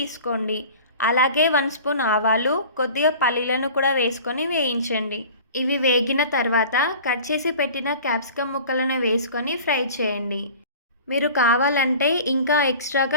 అలాగే 1 స్పూన్ ఆవాలు, కొద్దిగా పల్లీలను కూడా వేసుకొని వేయించండి. ఇవి వేగిన తర్వాత కట్ చేసి పెట్టిన క్యాప్సికమ్ ముక్కలను వేసుకొని ఫ్రై చేయండి. మీరు కావాలంటే ఇంకా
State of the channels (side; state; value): both; inverted; correlation -0.41